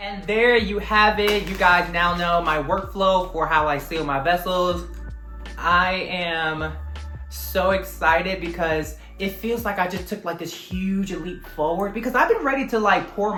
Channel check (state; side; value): identical; both; correlation 1.00